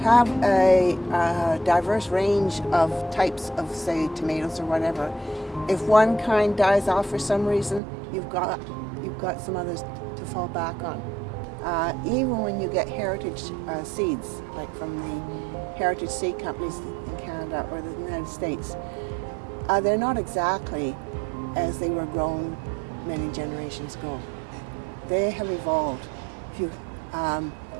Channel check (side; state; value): left; drops out; at 7.8 s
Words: a diverse range of types of, say, tomatoes or whatever, if one kind dies off for some reason, you've got some others to fall back on. Even when you get heritage seeds, like from the heritage seed companies in Canada or the United States, they're not exactly as they were grown many generations ago. They have evolved.